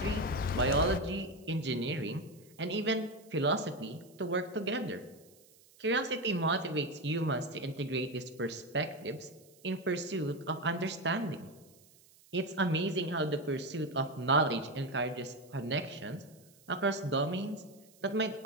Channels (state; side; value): noise; right; hiss, 27 dB below the sound